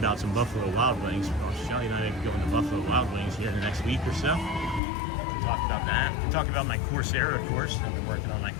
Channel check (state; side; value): drops out; right; at 4.8 s